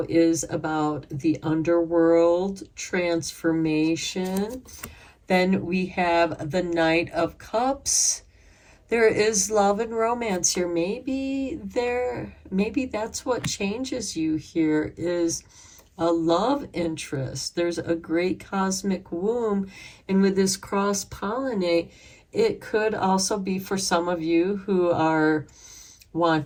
is about the underworld, transformation. Then we have the Knight of Cups. There is love and romance here. Maybe that's what changes you here, is a love interest. There's a great cosmic womb. And with this cross-pollinate, it could also be for some of you who are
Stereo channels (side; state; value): both; identical; correlation 1.00